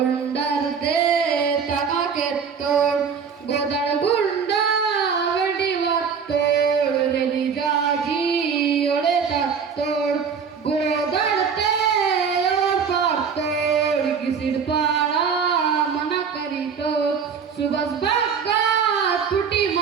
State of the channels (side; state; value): left; quieter; 6.4 dB